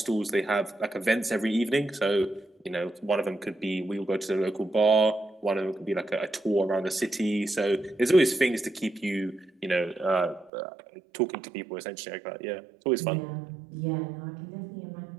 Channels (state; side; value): drops out; left; at 10.5 s